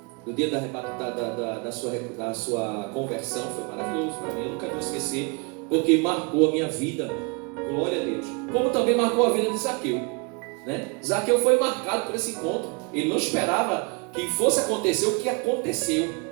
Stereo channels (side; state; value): left; quieter; 31.8 dB